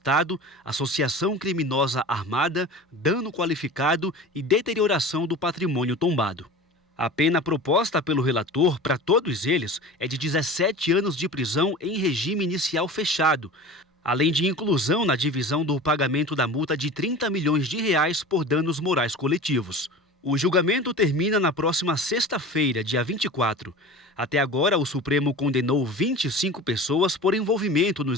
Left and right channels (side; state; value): both; normal; correlation 0.35